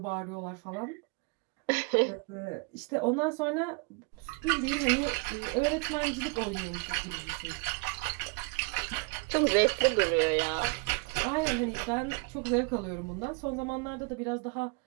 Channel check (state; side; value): quieter; left; 28.4 dB